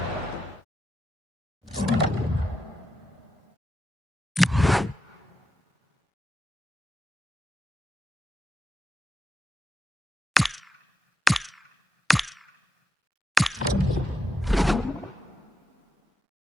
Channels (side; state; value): both; normal; correlation 0.86